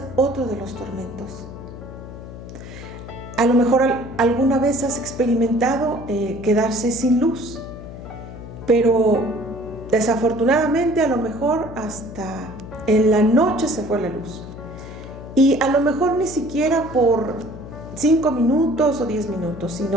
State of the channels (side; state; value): left; noise; hum, 13 dB below the sound